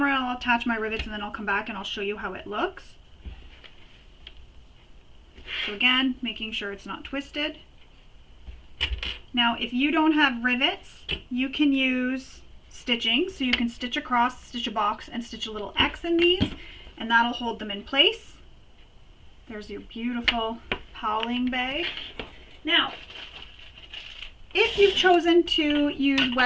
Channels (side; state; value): both; identical; correlation 1.00